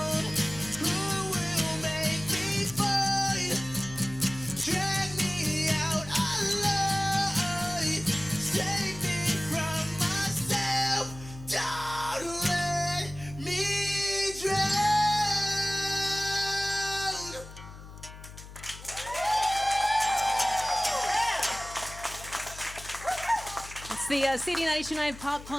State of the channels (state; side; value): noise; left; hum, 15 dB below the sound